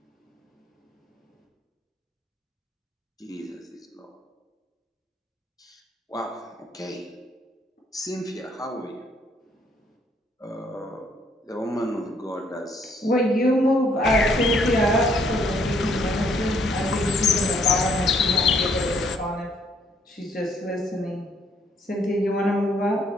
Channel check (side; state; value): both; normal; correlation 0.67